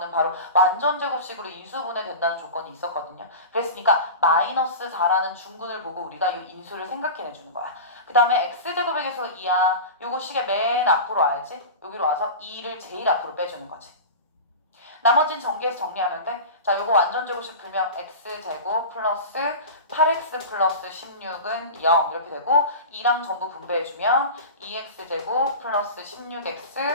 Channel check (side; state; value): both; inverted; correlation -0.30